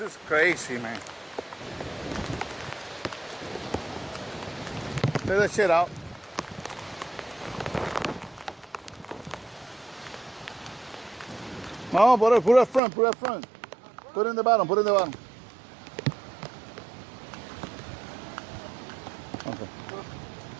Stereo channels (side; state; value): left; drops out; at 12.8 s